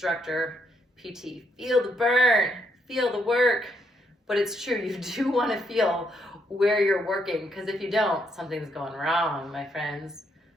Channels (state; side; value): normal; both; correlation 0.75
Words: PT, feel the burn, feel the work. But it's true, you do want to feel where you're working, because if you don't, something's going wrong, my friends.